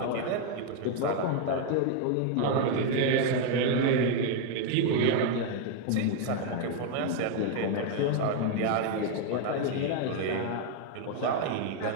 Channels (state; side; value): different; both; correlation 0.01